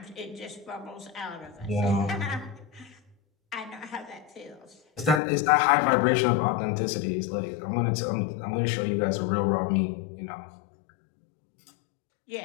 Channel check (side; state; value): right; drops out; at 5.2 s